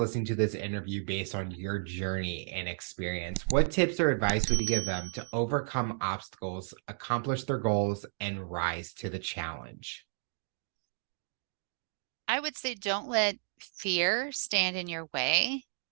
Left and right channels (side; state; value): left; silent; digital silence